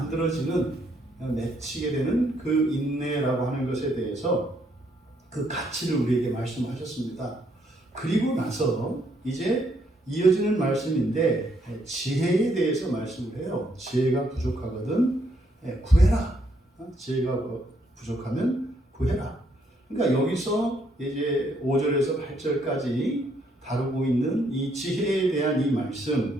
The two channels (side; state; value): both; normal; correlation 0.72